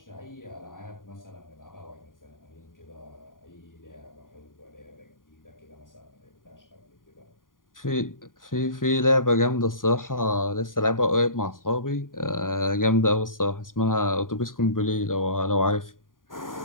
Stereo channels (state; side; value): late; right; 0.90 ms